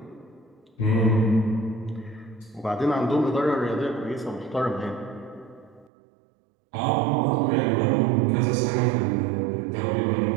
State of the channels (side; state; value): left; drops out; at 5.9 s